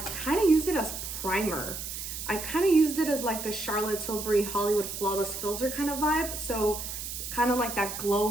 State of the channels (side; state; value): right; noise; hiss, 7 dB below the sound